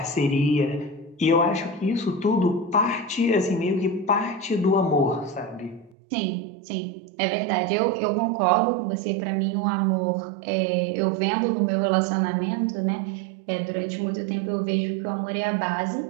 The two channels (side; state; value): left; drops out; at 6.0 s